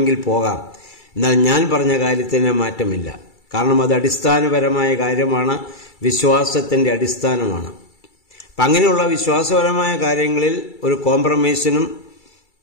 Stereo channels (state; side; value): late; right; 2.3 ms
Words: പോകാം, എന്നാൽ ഞാൻ പറഞ്ഞ കാര്യത്തിന് മാറ്റമില്ല. കാരണം അത് അടിസ്ഥാനപരമായ കാര്യമാണ്, വിശ്വാസത്തിന്റെ അടിസ്ഥാനമാണ്. അപ്പം അങ്ങനെയുള്ള വിശ്വാസപരമായ കാര്യങ്ങളിൽ ഒരു കോംപ്രമൈസിനും